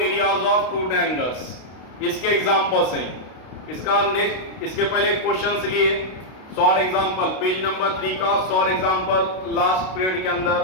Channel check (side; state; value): right; late; 32 ms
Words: of two triangles, इसके एग्जांपल्स हैं। इसका नेक्स्ट, इसके पहले क्वेश्चंस लिए शॉर्ट एग्जांपल, पेज नंबर 3 का शॉर्ट एग्जांपल लास्ट पीरियड के